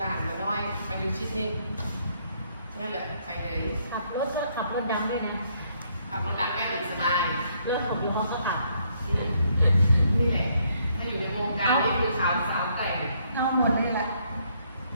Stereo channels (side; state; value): both; inverted; correlation -0.70